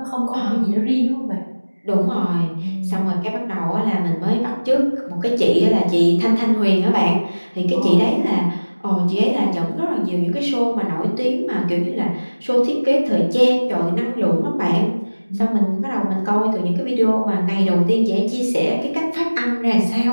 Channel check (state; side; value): inverted; both; correlation -1.00